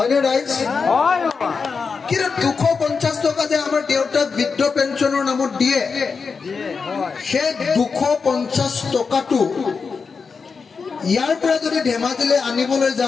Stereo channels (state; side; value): quieter; right; 5.2 dB